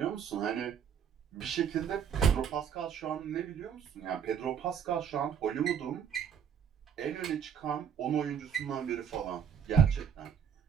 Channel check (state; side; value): quieter; left; 7.9 dB